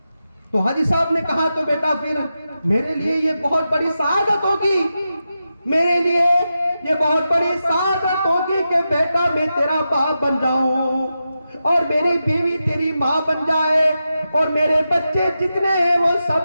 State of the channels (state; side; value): inverted; both; correlation -0.89